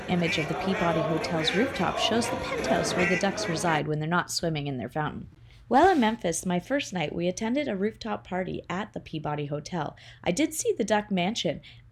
image of the Peabody Hotel's rooftop shows the penthouse where the ducks reside when they're not swimming in their fountain. While in Memphis, my first night, we attended a rooftop party at the Peabody Hotel. I did see the duck mansion,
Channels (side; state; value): both; identical; correlation 1.00